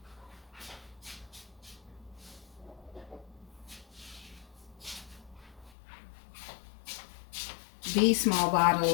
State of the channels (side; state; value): right; drops out; at 5.7 s